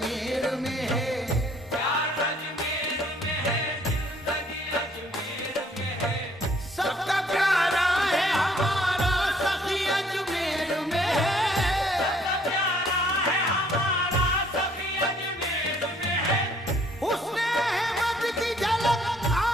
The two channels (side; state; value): both; normal; correlation 0.62